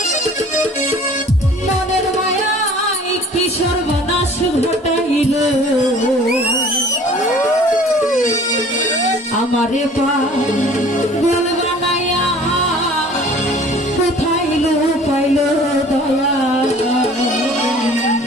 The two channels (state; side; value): normal; both; correlation 0.49